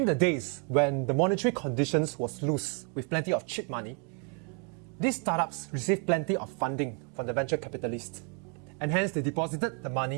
the days when the monetary conditions was loose with plenty of cheap money, these startups received plenty of funding from the venture capitalists, and hence they deposited the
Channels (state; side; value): quieter; left; 35.7 dB